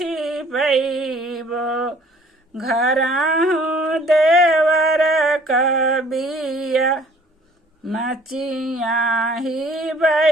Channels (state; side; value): normal; both; correlation 0.55